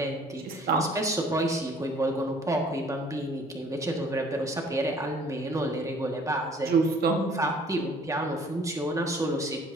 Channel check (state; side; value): normal; both; correlation 0.55